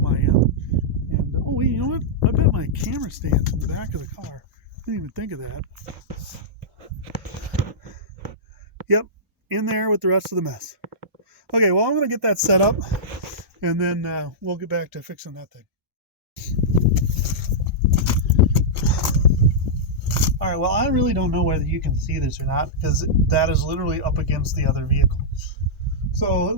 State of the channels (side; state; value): both; normal; correlation -0.12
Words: I am. And oh wait, you know what? I bet my camera stand's in the back of the car. I didn't even think of that. Yep, in there with the rest of the mess. Okay, well, I'm going to get that set up, and then we'll get back to fixing that thing. All right, well, I really don't know whether you can see this or not, because that is literally up against the other vehicle. So at